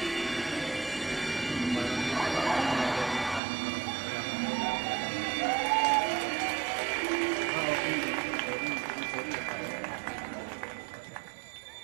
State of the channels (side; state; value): left; drops out; at 3.4 s